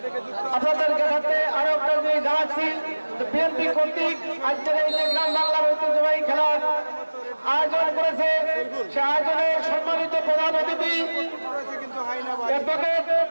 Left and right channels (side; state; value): both; inverted; correlation -1.00